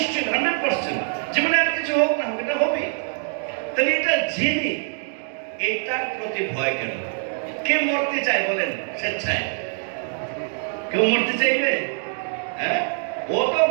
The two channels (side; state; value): left; silent; 62 dB below the other